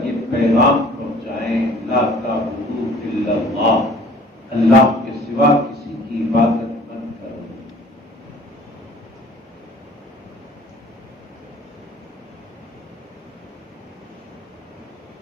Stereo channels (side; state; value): both; normal; correlation 0.51